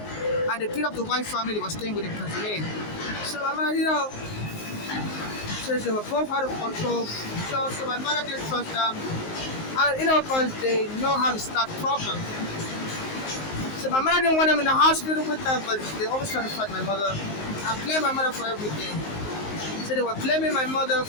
and they beat up the white family they were staying with in Pennsylvania. So my mother, says they were both out of control. So my mother didn't trust them. And because they know how to start problems. So my mother didn't want them in the hospital with her, but they always try to fight my mother. I blame my mother for everything. So they were blaming my mother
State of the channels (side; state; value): right; late; 19 ms